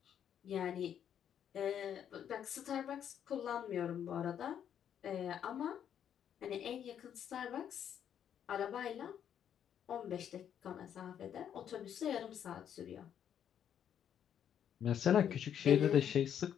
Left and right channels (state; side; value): quieter; right; 9.2 dB